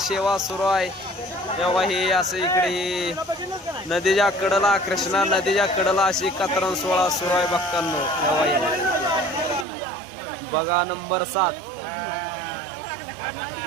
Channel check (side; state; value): left; drops out; at 9.7 s